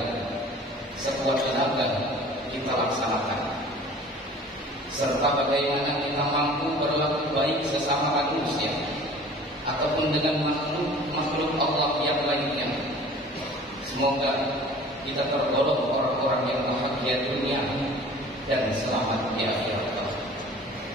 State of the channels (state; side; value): normal; both; correlation 0.46